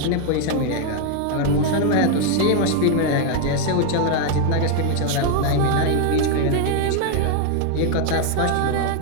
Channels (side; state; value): both; different; correlation 0.01